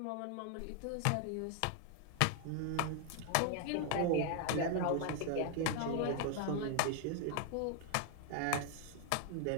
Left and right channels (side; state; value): both; different; correlation 0.00